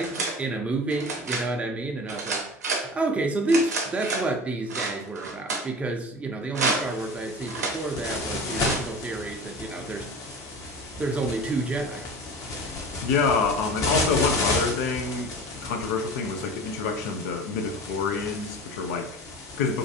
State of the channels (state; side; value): normal; both; correlation 0.36